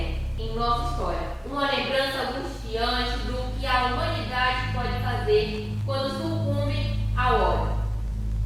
em nossa história, uma lembrança angustiante do que a humanidade pode fazer quando sucumbe ao ódio.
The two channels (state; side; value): identical; both; correlation 1.00